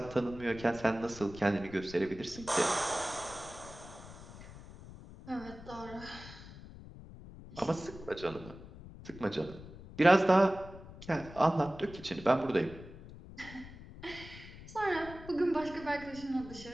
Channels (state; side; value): noise; left; rumble, 16 dB below the sound